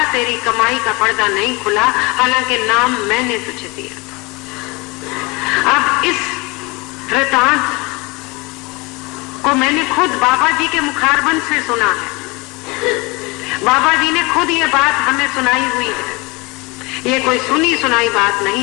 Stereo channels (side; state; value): right; quieter; 26.0 dB